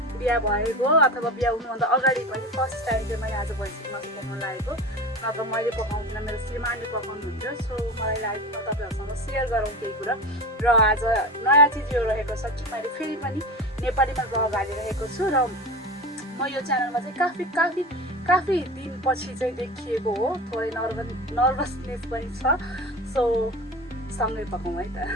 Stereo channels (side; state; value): both; normal; correlation 0.29